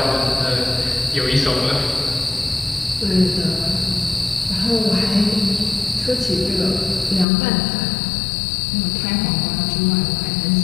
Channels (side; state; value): right; drops out; at 7.2 s